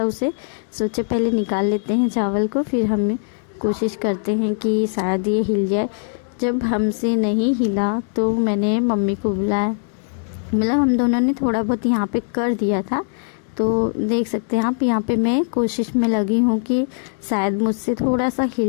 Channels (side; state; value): right; silent; digital silence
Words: उसे सोचे पहले निकाल लेते हैं चावल को, फिर हम कोशिश करते हैं कि शायद ये हिल जाए। जब हमसे नहीं हिला तो मैंने मम्मी को बुलाया, मतलब हम दोनों ने थोड़ा बहुत यहाँ पे कर दिया था। तो देख सकते हैं आप, यहाँ पे मैं कोशिश में लगी हूँ कि शायद मुझसे थोड़ा सा